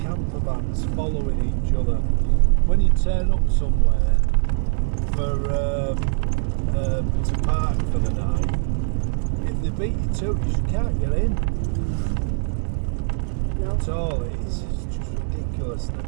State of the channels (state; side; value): silent; left; digital silence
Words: camper vans following each other. When you turn up somewhere to park for the night, if they beat you to it, you can't get in. No. At all. It's just ridiculous.